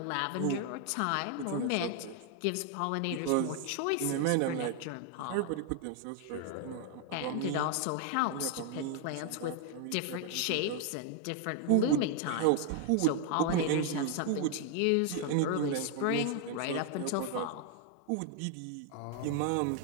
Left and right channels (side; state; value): both; different; correlation 0.00